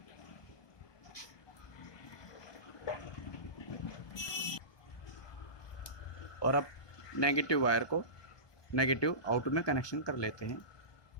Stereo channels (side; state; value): right; late; 1.2 ms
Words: और अब नेगेटिव वायर को नेगेटिव आउट में कनेक्शन कर लेते हैं।